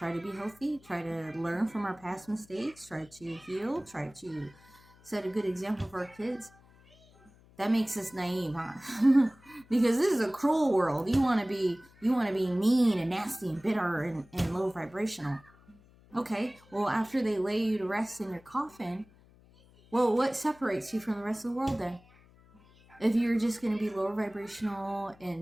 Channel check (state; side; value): noise; left; hum, 27 dB below the sound